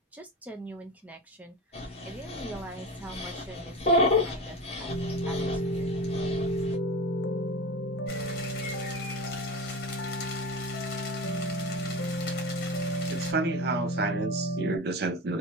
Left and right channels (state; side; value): normal; both; correlation 0.27